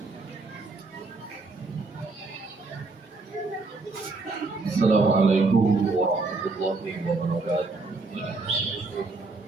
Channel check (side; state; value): left; quieter; 3.7 dB